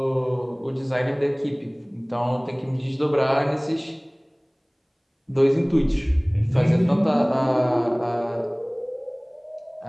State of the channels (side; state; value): both; identical; correlation 1.00